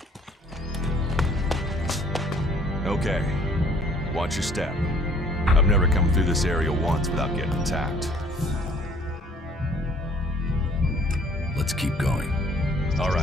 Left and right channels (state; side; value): normal; both; correlation 0.56